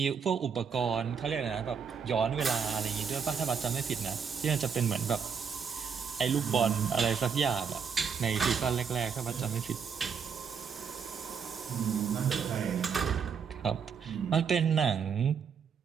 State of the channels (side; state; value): left; quieter; 6.5 dB